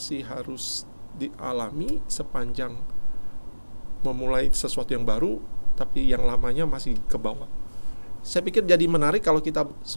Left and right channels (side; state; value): both; inverted; correlation -1.00